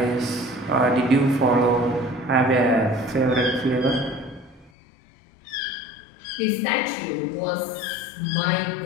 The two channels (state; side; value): drops out; right; at 4.7 s